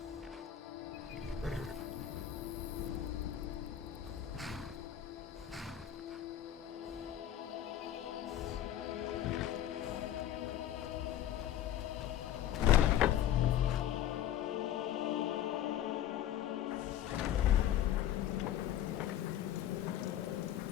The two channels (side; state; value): right; quieter; 11.3 dB